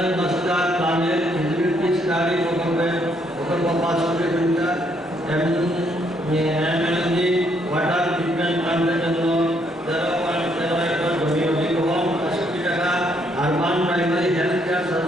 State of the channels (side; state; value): both; normal; correlation 0.71